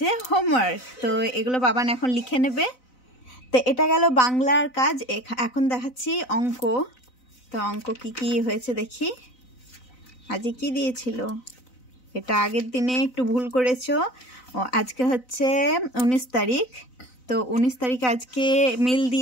হোমওয়ার্ক। তো এগুলো বাবান এখন লিখে নেবে। তো এটা গেল বাংলার কাজ। এখন দেখাচ্ছি অঙ্ক। তো অঙ্ক কি কি হয়েছে দেখি। আজকে কি দিয়েছিল? এটা আগের দিনে একটু ভুল করেছো। আজকে হচ্ছে 19 তারিখ। তো 19 তারিখে আজকে মিল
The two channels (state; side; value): late; right; 4.0 ms